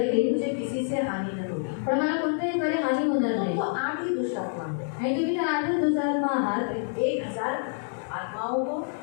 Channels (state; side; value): silent; right; 57 dB below the other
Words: येतील. मुझे किसी से हानि न होगी। पण मला कोणत्याही बरे हानी होणार नाही. तो 8 ही दुष्ट आत्मा है। आणि तुम्ही तर 8 दुरात्मा आहात. 1000 आत्माओं को,